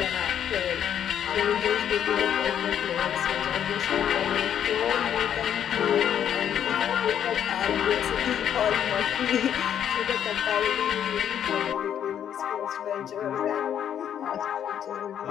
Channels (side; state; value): right; quieter; 9.4 dB